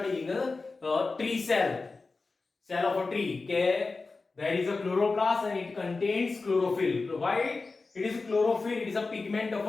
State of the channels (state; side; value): quieter; right; 3.9 dB